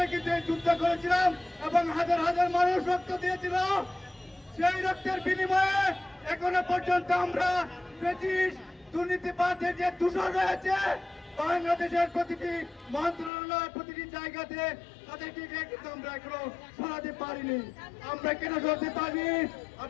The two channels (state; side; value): drops out; right; at 13.3 s